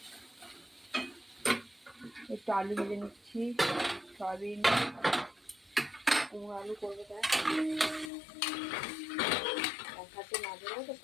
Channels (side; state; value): right; drops out; at 8.1 s